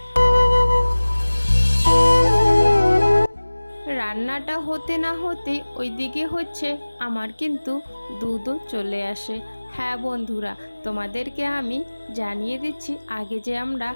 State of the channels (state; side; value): inverted; both; correlation -1.00